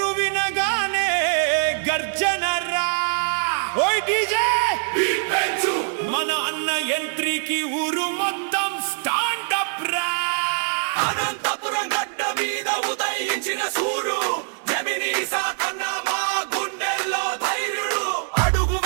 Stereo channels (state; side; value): silent; left; digital silence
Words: వినగానే గర్జన రా. ఓయ్ డీజే మన అన్న ఎంట్రీకి ఊరు మొత్తం స్టాండప్ రా. అనంతపురం గడ్డ మీద ఉదయించిన సూర్యుడు జమినీ సాకన్న మా గుండెల్లో ధైర్యుడు. అడుగు